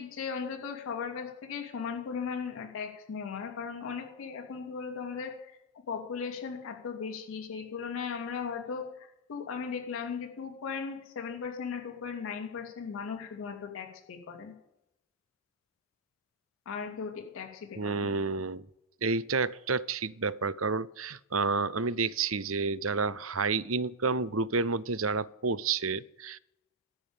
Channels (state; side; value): normal; both; correlation -0.06